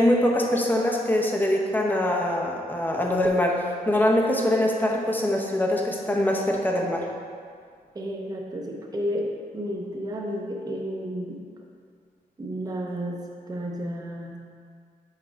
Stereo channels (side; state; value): both; normal; correlation 0.77